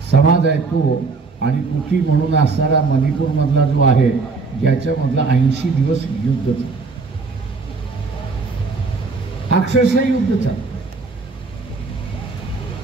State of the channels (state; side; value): quieter; left; 4.2 dB